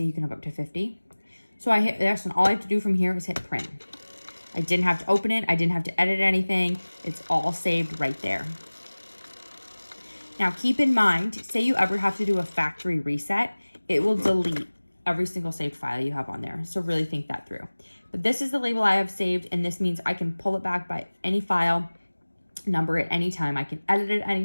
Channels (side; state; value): both; inverted; correlation -1.00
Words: you can have up to 50. So I hit this, and all I have to do from here is hit print. I didn't have to open it, I didn't have to edit anything. It's all saved right there. Now keep in mind, say you ever have to do a factory reset, it will delete every single saved file you have on there. So really think that through. But this is the label I have saved, and this means I can pull it back by any file, number it anytime. I can edit it